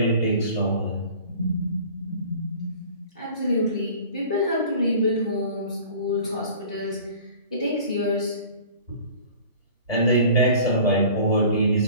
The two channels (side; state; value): both; inverted; correlation -0.45